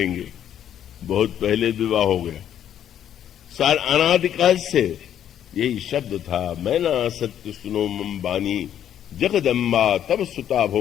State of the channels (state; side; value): quieter; right; 10.2 dB